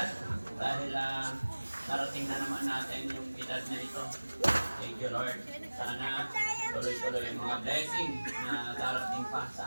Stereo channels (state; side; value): inverted; both; correlation -1.00